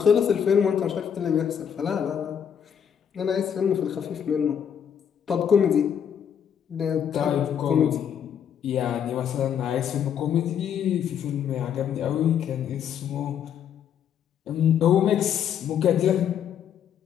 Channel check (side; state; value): right; quieter; 8.4 dB